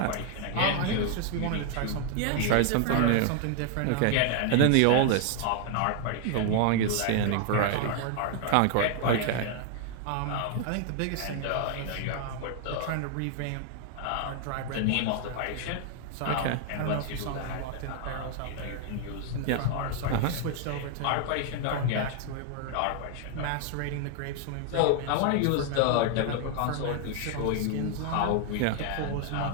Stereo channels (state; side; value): different; both; correlation 0.00